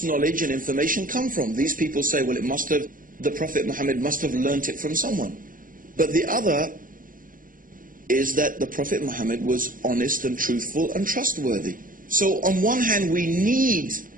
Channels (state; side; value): late; left; 0.40 ms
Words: knowledge and information come from? These people say, well, the Prophet Muhammad must have learnt it from someone. But the other is that the Prophet Muhammad was honest and truthful and trustworthy. So on one hand, we need,